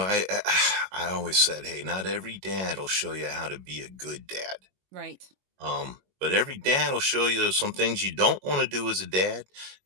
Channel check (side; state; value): left; late; 21 ms